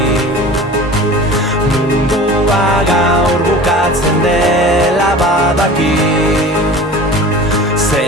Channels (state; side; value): normal; both; correlation 0.39